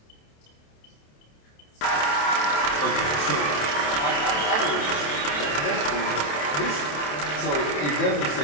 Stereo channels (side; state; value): right; late; 27 ms